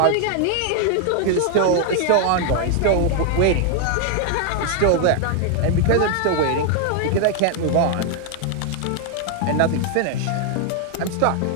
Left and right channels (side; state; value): both; different; correlation 0.00